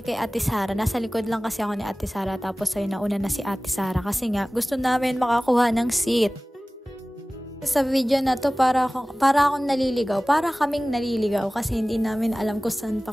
kay Ate Sara. Nasa likod lang kasi ako ni Ate Sara tapos ay nauna na si Ate Sara kasi nga gusto namin makakuha ng seat. Sa video na to para akong naliligaw, para kaming naliligaw kasi hindi namin alam kung saan pa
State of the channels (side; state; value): both; normal; correlation 0.98